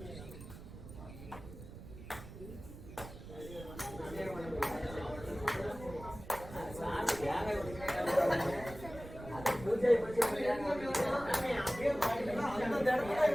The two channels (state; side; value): noise; right; rumble, 14 dB below the sound